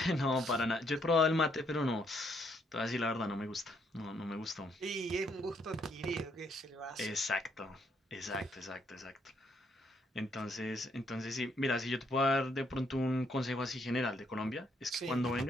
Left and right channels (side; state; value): both; normal; correlation 0.72